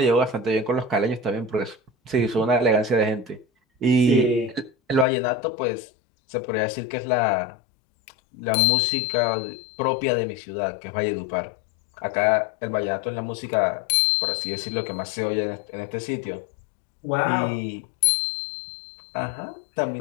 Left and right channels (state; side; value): drops out; right; at 5.1 s